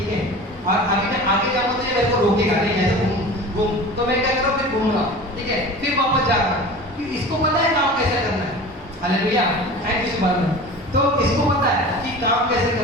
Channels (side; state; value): both; normal; correlation 0.37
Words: है। और अभी मैं आगे जाऊंगा तो ये मेरे को रोकेगा नहीं, ऐसे घूम, तो मैं क्या करूँ? फिर घूमूंगा, ठीक है, फिर वापस जाऊंगा। इसको पता है काम कैसे करना है। हालेलुया। थैंक यू सुभान। तो इसको पता है कि काम कैसे